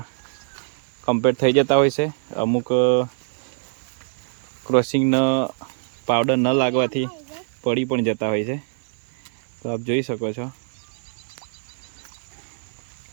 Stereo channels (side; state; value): left; silent; 63 dB below the other